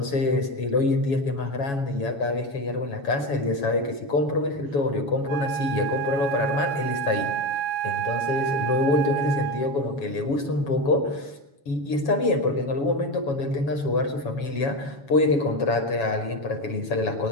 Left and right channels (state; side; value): late; right; 7.2 ms